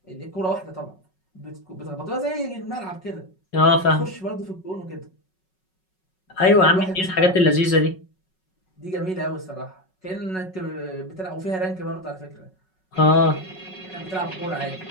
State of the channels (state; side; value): late; right; 5.4 ms